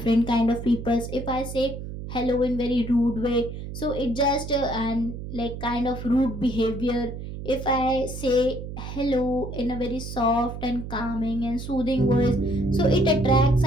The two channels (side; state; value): right; noise; hum, 8 dB below the sound